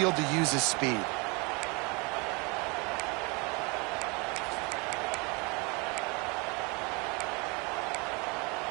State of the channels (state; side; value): quieter; left; 29.5 dB